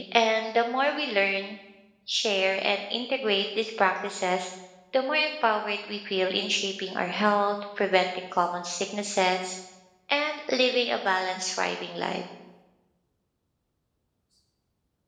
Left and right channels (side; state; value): both; identical; correlation 1.00